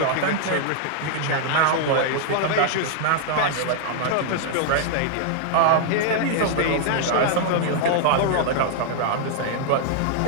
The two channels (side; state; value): both; different; correlation -0.01